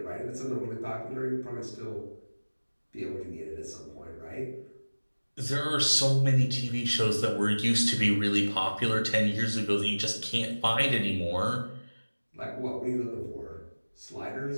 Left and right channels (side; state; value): both; inverted; correlation -1.00